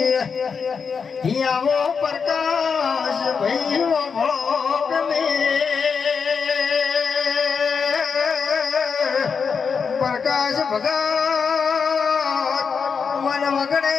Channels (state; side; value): quieter; right; 5.9 dB